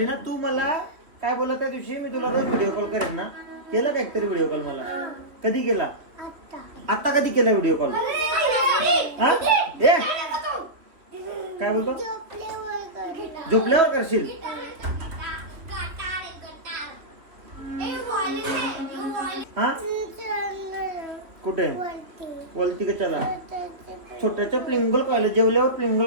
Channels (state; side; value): late; left; 3.1 ms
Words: ना. तू मला काय बोला त्या दिवशी मी तुला रोज व्हिडिओ कॉल करेन ना. केला का एकतरी व्हिडिओ कॉल मला. कधी केला. आता कधी केला व्हिडिओ कॉल. हा ए काय बोलतो. झोपल्यावर करशील. हा कुठे वलती का. चला छोट्याच्या प्लिंगल खायला. जेवल्यावर